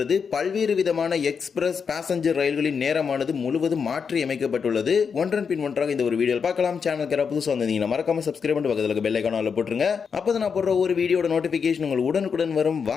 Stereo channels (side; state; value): right; quieter; 6.1 dB